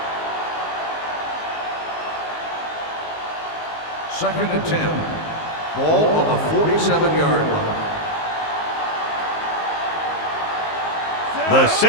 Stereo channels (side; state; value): right; late; 19 ms